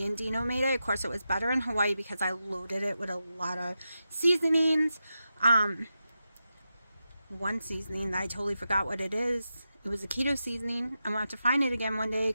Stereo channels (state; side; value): inverted; both; correlation -0.90